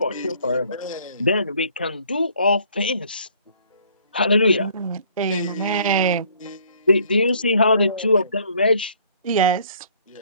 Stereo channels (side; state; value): both; inverted; correlation -0.59